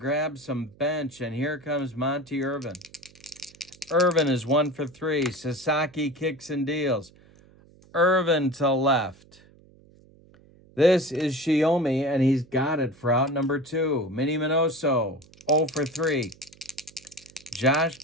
some bench, and here comes Monty Irvin. Irvin is 1 for 3. Sasaki kicks and deals. Irvin to left. This is Shiomi, and he's got it for out number 2. Minnie Minoso, 0 for 3. Josh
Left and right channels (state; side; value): noise; right; hum, 27 dB below the sound